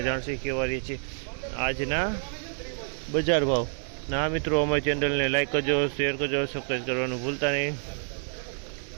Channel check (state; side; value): silent; left; 59 dB below the other